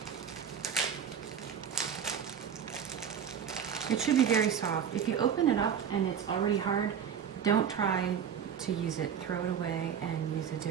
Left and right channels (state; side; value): quieter; left; 8.1 dB